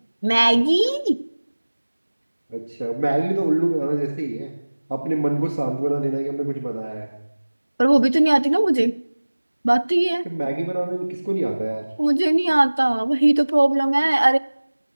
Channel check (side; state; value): both; inverted; correlation -1.00